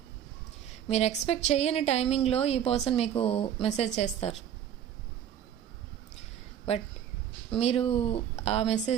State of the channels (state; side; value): quieter; left; 9.8 dB